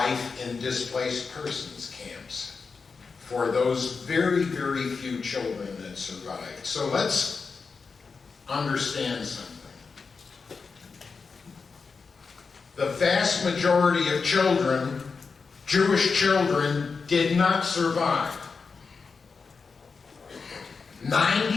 in displaced persons camps for those very, very few children that survived. So let's understand something. The vast majority of children, Jewish children, did not survive.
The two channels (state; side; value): quieter; right; 4.9 dB